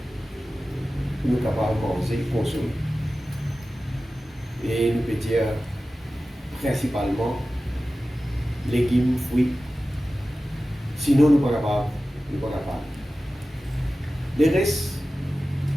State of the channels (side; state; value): both; normal; correlation 0.95